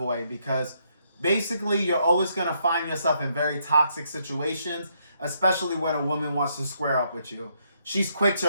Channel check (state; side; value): inverted; both; correlation -0.74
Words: because basically you're always going to find yourself in very toxic situations, especially when a woman wants to square up with you. She's quick